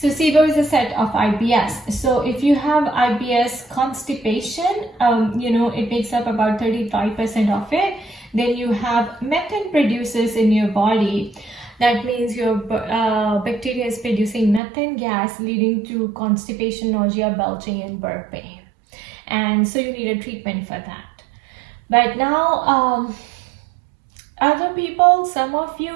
SIBO is a set of IBS. So if you have IBS constipation, it makes up about 35% of it. Then you have methane producers in your body. That means your bacteria is producing methane gas, leading to constipation, nausea, belching, and burping. And so you need a treatment for that. But now, other people, some of you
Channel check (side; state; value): left; drops out; at 14.6 s